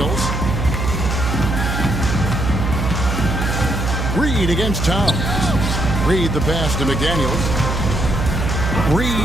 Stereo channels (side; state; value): right; noise; hum, 1 dB below the sound